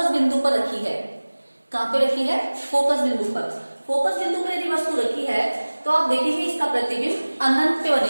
बिंदु पर रखी है। कहां पे रखी है? फोकस बिंदु पर। फोकस बिंदु पर यदि वस्तु रखी है तो आप देखेंगे इसका प्रतिबिंब अनंत पे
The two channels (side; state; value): both; inverted; correlation -1.00